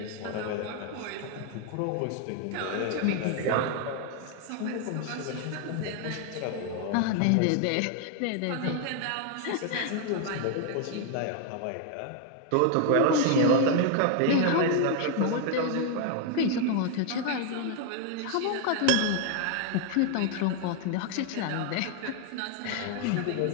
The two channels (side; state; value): both; different; correlation 0.00